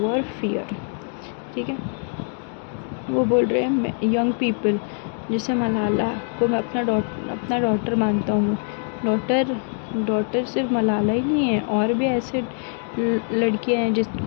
fear, ठीक है। वो बोल रहे हैं यंग पीपल, जैसे मलाला को मैं अपना डॉटर मानता हूँ। डॉटर सिर्फ मलाला ही नहीं है, और भी ऐसे लड़कियां हैं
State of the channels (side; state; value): right; silent; 55 dB below the other